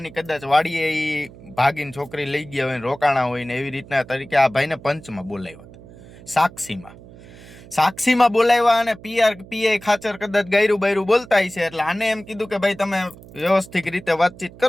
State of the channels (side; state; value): right; noise; hum, 20 dB below the sound